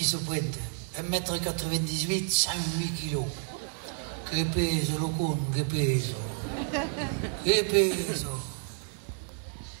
se pointe. 1,98 m, 108 kg. Que peso, lo con, que peso. Que peso.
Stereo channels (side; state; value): left; silent; 58 dB below the other